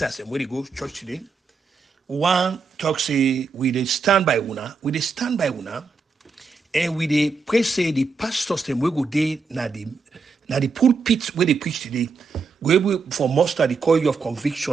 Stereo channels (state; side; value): quieter; left; 4.7 dB